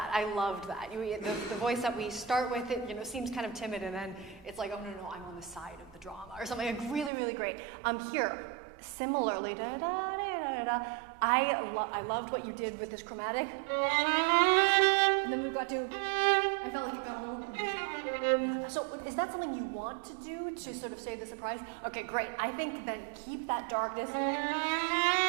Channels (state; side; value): drops out; left; at 7.1 s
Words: I loved that. The voice that we start with, it seems kind of timid, and then it's like, oh no, I'm on the side of the drama or something. Like really, really great. Here, similarly, I loved what you did with this chromatic. And then we got to, I felt like it got a little. So is that something you want to do to sort of save the surprise? Okay, great. I think then keep that darkness.